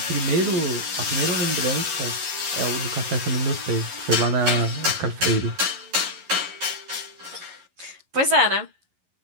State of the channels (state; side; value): late; left; 11 ms